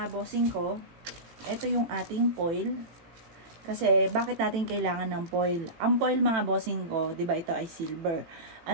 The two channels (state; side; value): late; left; 18 ms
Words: bossing ko, ito yung ating foil. Kasi bakit natin kailangan ng foil? Ang foil mga bossing ko, 'di ba ito ay silver.